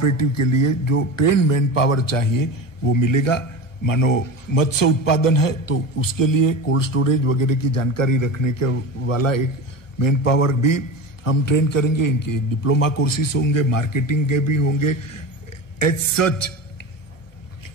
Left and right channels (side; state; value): right; late; 1.1 ms